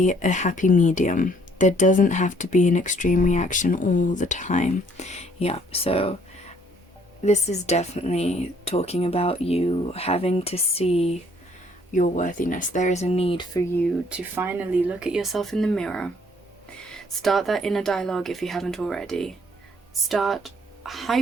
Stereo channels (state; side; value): normal; both; correlation 0.62